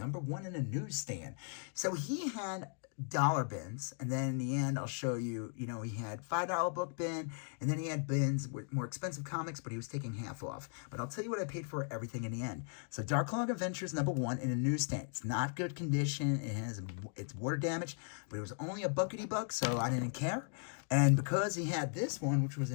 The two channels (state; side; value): silent; right; 53 dB below the other